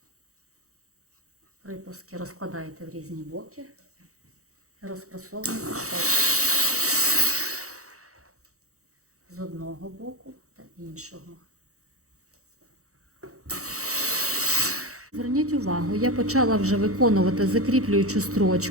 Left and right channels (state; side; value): late; left; 0.65 ms